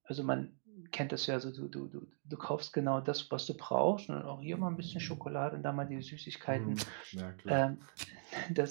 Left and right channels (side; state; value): left; silent; digital silence